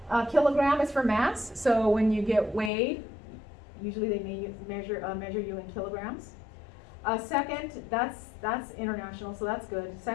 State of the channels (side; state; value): right; drops out; at 2.7 s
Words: Kilogram is for mass, so when you get weighed, usually they may measure you in kilograms. Second, that's international, so that's good.